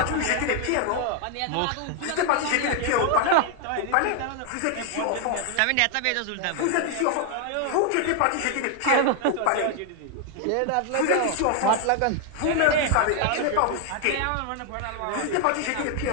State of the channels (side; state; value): both; different; correlation 0.00